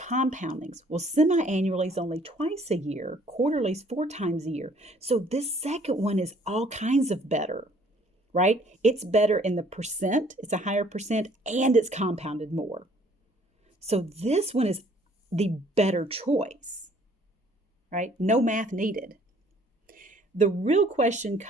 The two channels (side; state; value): both; normal; correlation 0.59